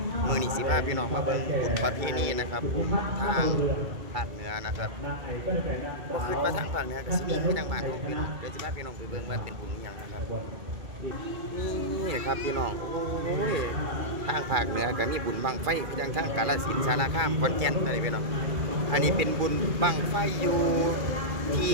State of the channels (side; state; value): left; late; 2.3 ms